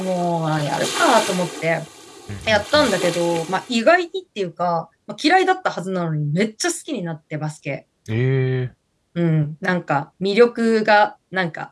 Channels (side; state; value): both; identical; correlation 1.00